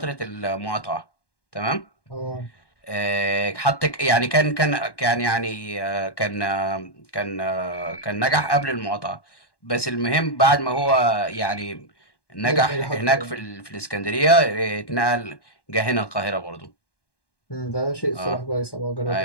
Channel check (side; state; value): right; late; 1.1 ms